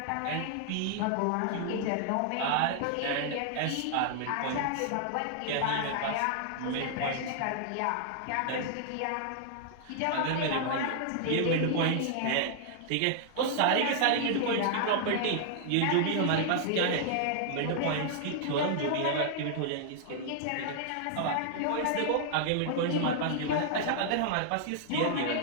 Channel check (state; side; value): different; both; correlation -0.01